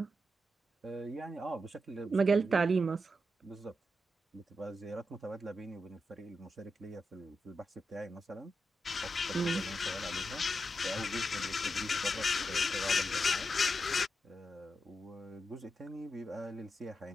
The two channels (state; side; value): normal; both; correlation 0.86